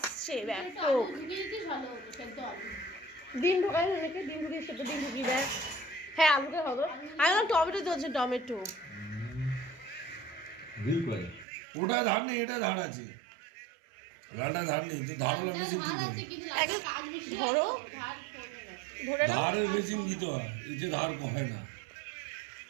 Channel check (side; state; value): left; drops out; at 11.5 s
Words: ব্যাপক। ডিম ঢোকাই নাকি, ডিম ঢুকিয়ে সেটা ডিম ঢুকিয়ে দেয়। হ্যাঁ আলুকে হবে। আমি টমেটো দিয়েছি, টমেটো ওটা ধার নেই, এটা ধার আছে। ওটা ধার নেই তো, ধার হলে মেশিন ধরো, ধরে নাও। ধারের মেশিন দিতে হয়, এতে ধার হয় না।